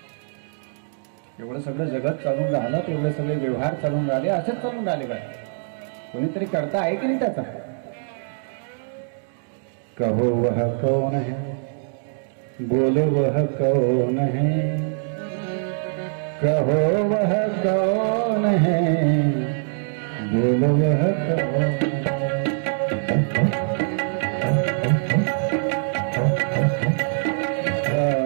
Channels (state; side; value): silent; left; digital silence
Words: एवढं सगळं जगत चालून राहिलं, एवढे सगळे व्यवहार चालून राहिले, असंच चालून राहिले का? कोणीतरी करता आहे की नाही त्याचा? कहो वह कौन है, बोलो वह कौन है, कहो वह कौन है, बोलो वह कौन है,